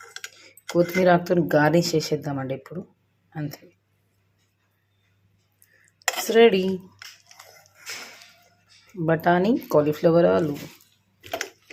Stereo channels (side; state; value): both; identical; correlation 1.00